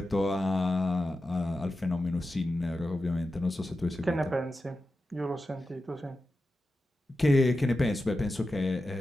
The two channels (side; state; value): both; normal; correlation 0.92